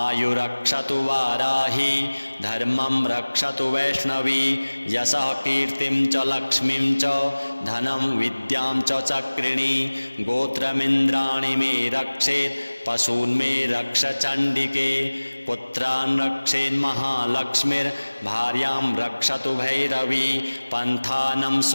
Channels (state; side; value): inverted; both; correlation -1.00